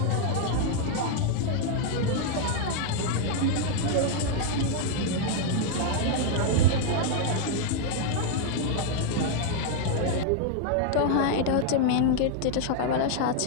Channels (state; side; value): different; both; correlation 0.00